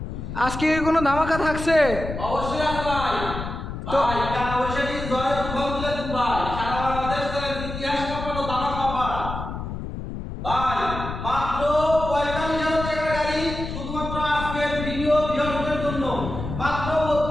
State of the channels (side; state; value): left; noise; rumble, 7 dB below the sound